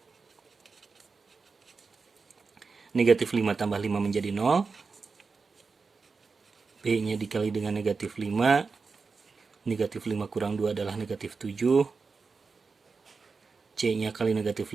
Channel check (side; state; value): left; quieter; 4.6 dB